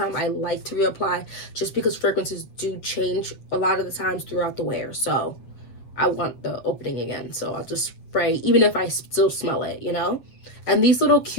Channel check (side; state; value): right; late; 8.1 ms